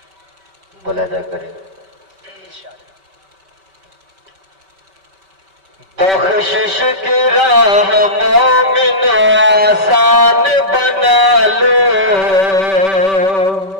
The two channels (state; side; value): late; left; 5.2 ms